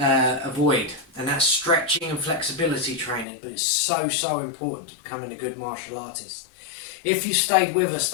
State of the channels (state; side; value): drops out; right; at 3.2 s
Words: and that's stretching and flexibility training. But it's so important to becoming a good martial artist. If you stayed with us